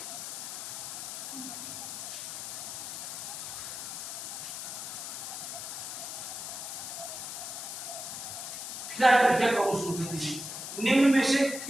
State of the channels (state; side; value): noise; left; hiss, 6 dB below the sound